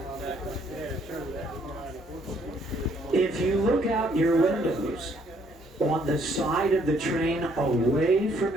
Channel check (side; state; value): both; normal; correlation 0.66